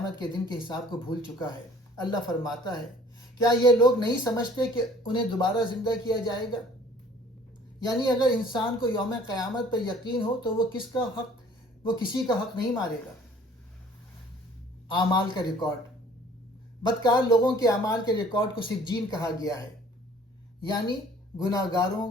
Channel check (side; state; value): both; normal; correlation 0.53